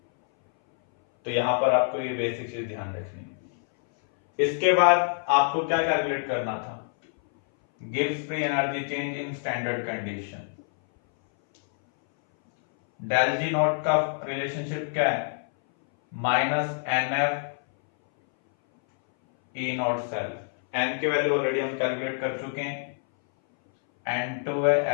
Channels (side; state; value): right; silent; 59 dB below the other